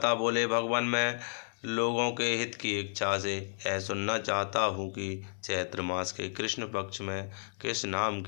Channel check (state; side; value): silent; right; 56 dB below the other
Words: बोले, भगवान, मैं लोगों के हित की इच्छा से यह सुनना चाहता हूँ कि चैत्र मास के कृष्ण पक्ष में किस नाम